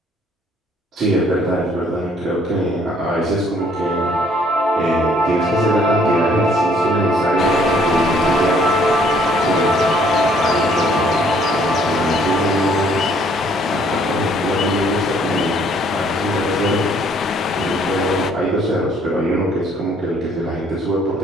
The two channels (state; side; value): normal; both; correlation 0.63